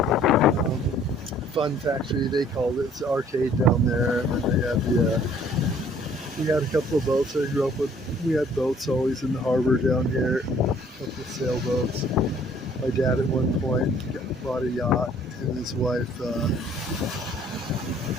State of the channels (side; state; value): both; normal; correlation 0.58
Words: the fun factory, they called it. It's the arcade down there. And then they had we had a couple of boats I grew up with. We had boats always in the harbor down here, a couple of sailboats. My dad at one point bought a yacht, him and his wife,